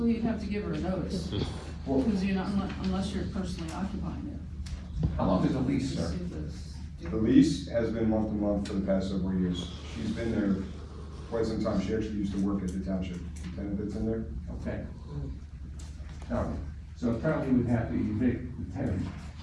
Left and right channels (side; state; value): both; identical; correlation 1.00